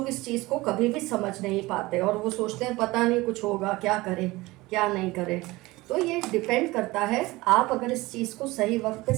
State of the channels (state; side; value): quieter; left; 20.5 dB